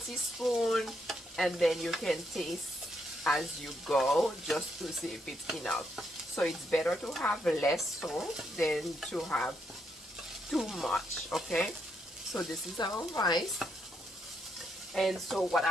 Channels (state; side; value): normal; both; correlation 0.78